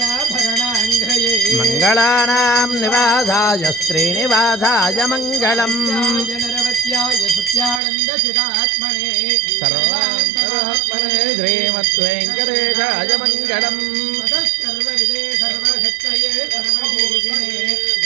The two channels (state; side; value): drops out; left; at 7.8 s